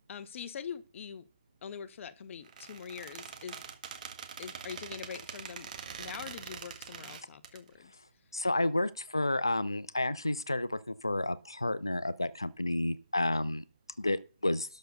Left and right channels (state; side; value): inverted; both; correlation -0.87